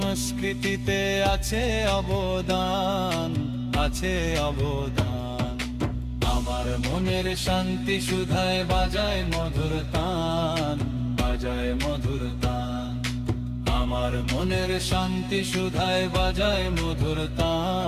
আছে অবদান, আছে অবদান। আমার মনের শান্তি সুধায় বাজায় মধুর তান, বাজায় মধুর তান। আমার মনের শান্তি সুধায় বাজায় মধুর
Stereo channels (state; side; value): identical; both; correlation 1.00